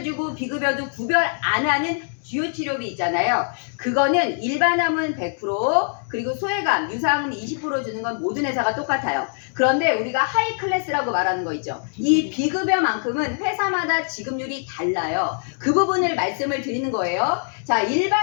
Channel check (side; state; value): right; silent; 64 dB below the other